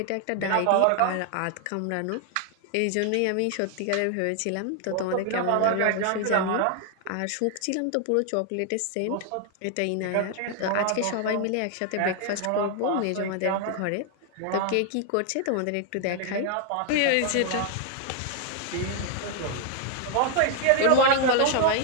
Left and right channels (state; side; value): different; both; correlation 0.00